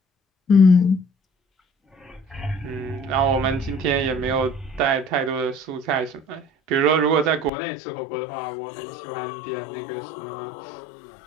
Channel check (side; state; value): right; drops out; at 7.5 s